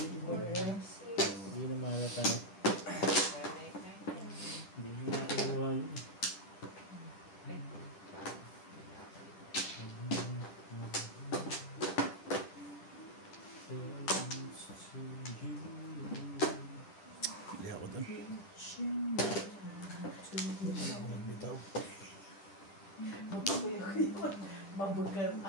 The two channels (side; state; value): right; late; 10 ms